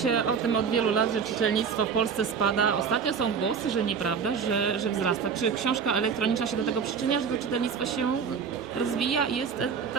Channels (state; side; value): quieter; left; 6.4 dB